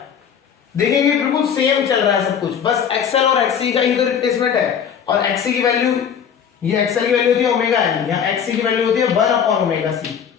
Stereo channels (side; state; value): right; quieter; 7.8 dB